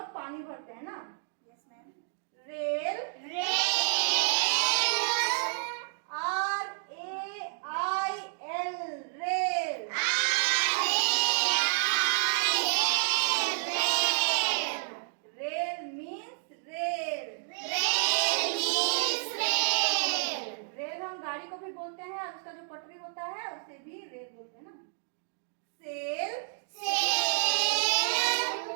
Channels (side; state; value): left; silent; digital silence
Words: पानी भरते हैं ना। Rail. Rail. Rail means rail. Rail हम गाड़ी को भी बोलते हैं और उसका जो पटरी होता है उसे भी रेल बोलते हैं ना। सेल। सेल।